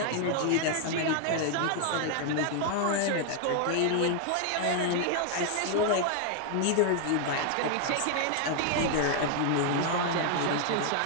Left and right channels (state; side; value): different; both; correlation 0.00